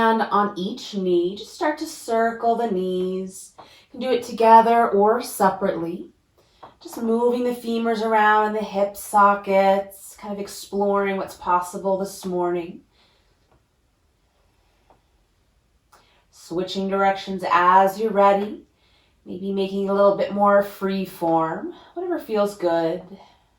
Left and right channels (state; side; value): identical; both; correlation 1.00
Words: on each knee, just start to circle the knees. You can do it together or separately. Just moving the femurs around in the hip sockets, kind of exploring what's possible this morning. Switching directions as you're ready. Maybe making a little bit more free form, whatever feels good.